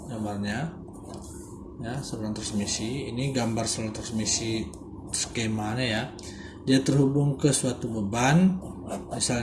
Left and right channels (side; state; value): both; identical; correlation 1.00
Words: gambarnya. Ya, saluran transmisi. Ini gambar saluran transmisi skemanya ya. Dia terhubung ke suatu beban,